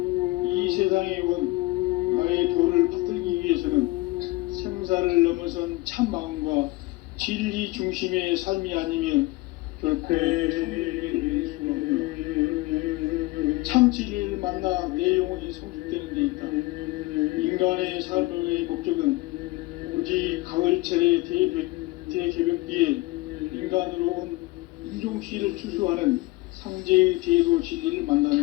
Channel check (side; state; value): right; quieter; 21.3 dB